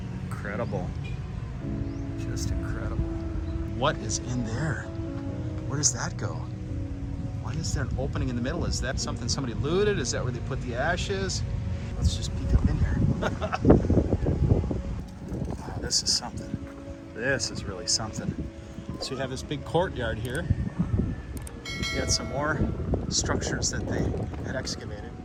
Incredible. Just incredible. What is in there? Where does that go? Why is there an opening in the middle? Is that something somebody looted? Is that where they put the ashes? Let's just peek up in here. Oh, this is something. This is really something. So you have this big courtyard here. You got some more structures that they had excavated.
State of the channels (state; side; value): identical; both; correlation 1.00